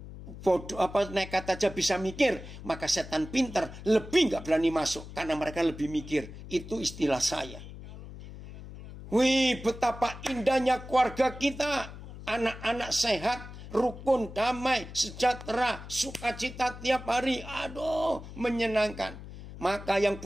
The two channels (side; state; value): left; noise; hum, 13 dB below the sound